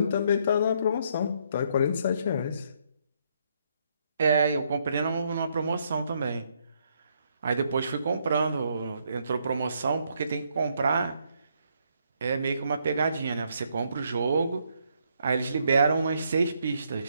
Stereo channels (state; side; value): inverted; both; correlation -0.73